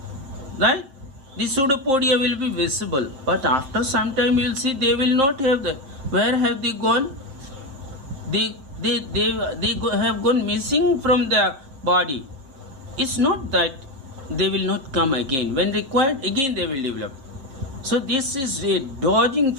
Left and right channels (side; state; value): left; late; 7.2 ms